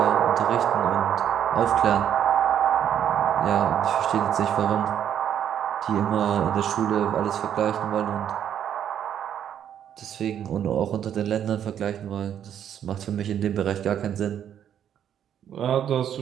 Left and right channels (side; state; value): left; quieter; 9.5 dB